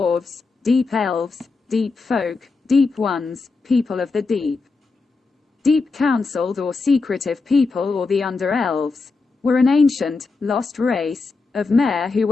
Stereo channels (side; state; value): right; quieter; 4.1 dB